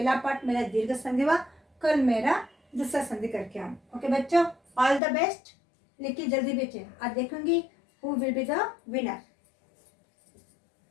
पार्ट मेरा दीर्घ संधि हुआ, कल मेरा दूसरा संधि करके आऊँ। ओके बच्चों, ऑल द बेस्ट। लिखिए जल्दी भेजिए। आज देखूंगी who will be the winner.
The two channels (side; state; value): right; drops out; at 5.0 s